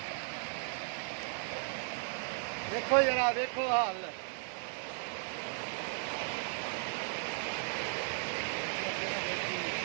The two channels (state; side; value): silent; left; 54 dB below the other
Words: ਦੇਖੋ ਜਰਾ ਦੇਖੋ ਹਾਲ